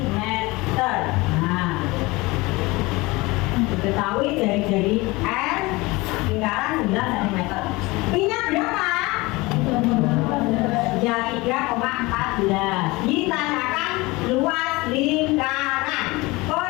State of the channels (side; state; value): right; quieter; 22.7 dB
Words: Nah, diketahui jari-jari R lingkaran 9 cm. Pi-nya berapa? Ya 3,14. Ditanyakan luas lingkaran.